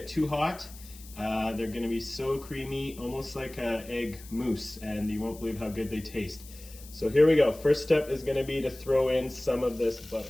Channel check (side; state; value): left; noise; hiss, 19 dB below the sound